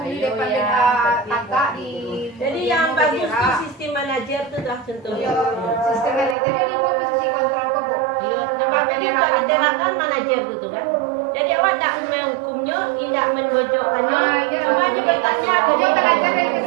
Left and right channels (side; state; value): left; drops out; at 6.4 s